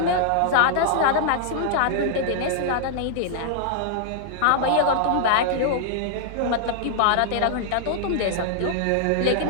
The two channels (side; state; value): both; different; correlation -0.01